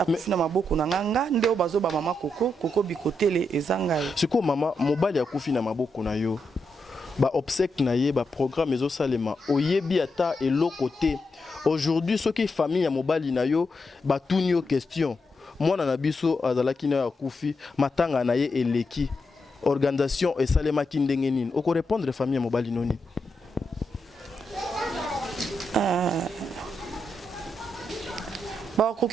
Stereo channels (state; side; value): normal; both; correlation 0.84